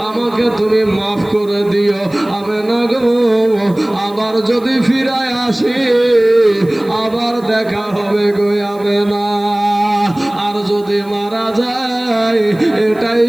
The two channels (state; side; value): noise; right; hiss, 27 dB below the sound